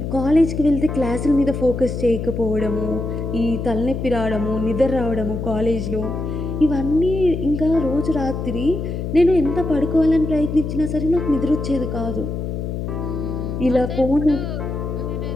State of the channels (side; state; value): left; noise; hum, 4 dB below the sound